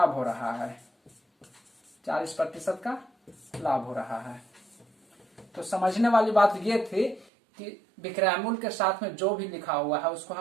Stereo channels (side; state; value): left; drops out; at 7.2 s